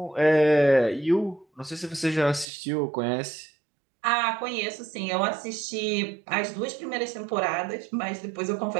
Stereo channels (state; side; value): drops out; left; at 2.5 s